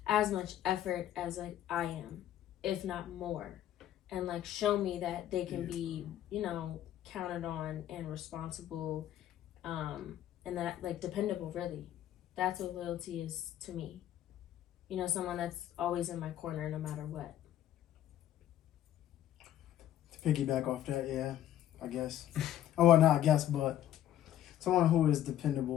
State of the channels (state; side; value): quieter; right; 11.9 dB